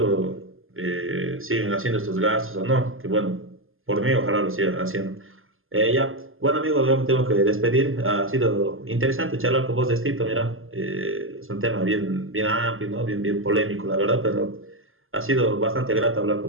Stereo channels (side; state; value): left; late; 0.60 ms